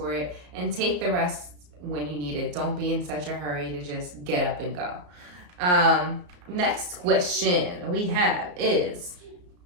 it and take the rest when you need it. Don't be in such a hurry to just get up and go. Next question we have is,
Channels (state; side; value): late; left; 34 ms